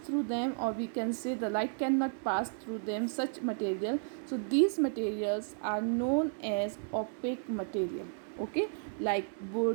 them, or we can say the light cannot pass through them, such material. So these materials are known as opaque material. Okay, like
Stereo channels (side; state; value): left; silent; digital silence